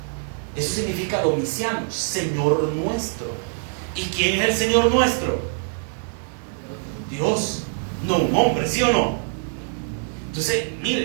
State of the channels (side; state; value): left; silent; 63 dB below the other